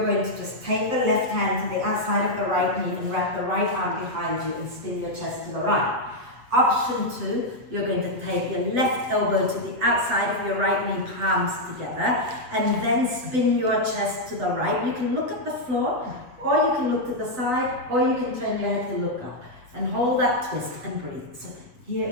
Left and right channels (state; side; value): late; left; 7.9 ms